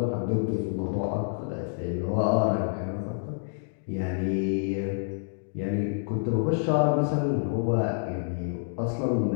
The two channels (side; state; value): right; silent; digital silence